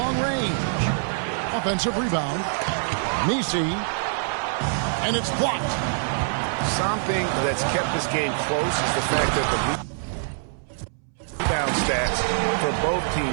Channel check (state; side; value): silent; left; 62 dB below the other